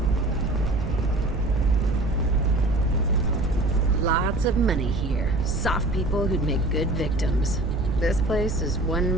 Lots of money here. Soft people who'd make good victims. This place is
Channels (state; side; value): noise; right; rumble, 6 dB below the sound